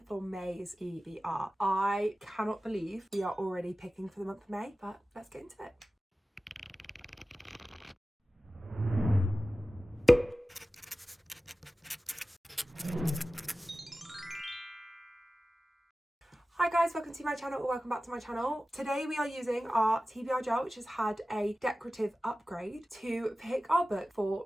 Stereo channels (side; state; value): both; normal; correlation 0.96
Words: May's TBR. I cannot believe we are already picking for the month of May, but let's get into it. Hi guys, welcome to my channel or welcome back to my channel. Today we are using our TBR jar, which has had a decorative upgrade, to pick our book for